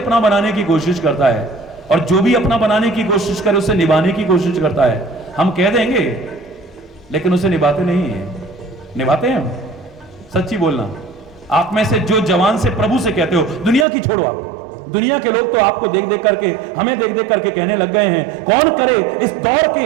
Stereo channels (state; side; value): drops out; left; at 13.9 s